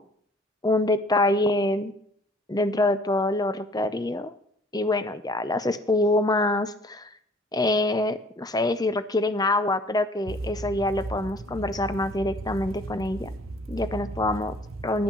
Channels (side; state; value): both; normal; correlation 0.54